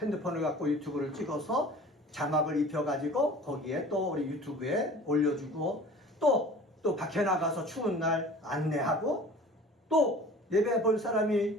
갖고 유튜브를 찍어서 자막을 입혀가지고 거기에 또 우리 유튜브에 올려주고 또 밖에 나가서 추운 날 안내하고 또 예배 볼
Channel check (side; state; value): both; normal; correlation 0.44